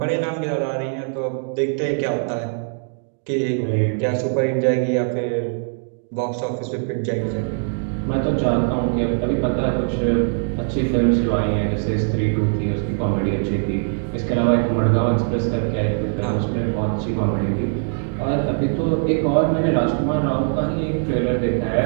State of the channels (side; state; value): left; silent; 62 dB below the other